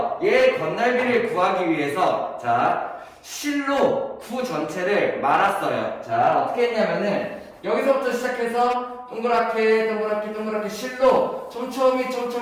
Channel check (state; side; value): identical; both; correlation 1.00